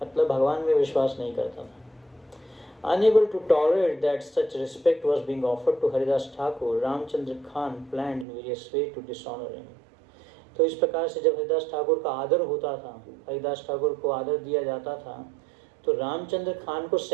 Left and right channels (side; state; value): left; drops out; at 8.2 s